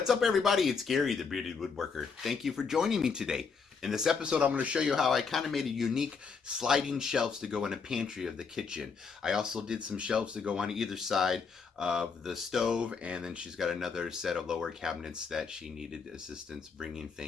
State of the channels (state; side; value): quieter; right; 5.4 dB